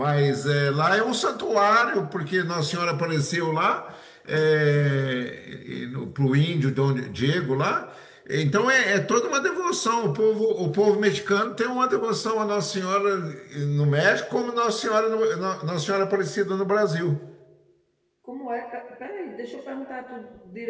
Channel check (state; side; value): identical; both; correlation 1.00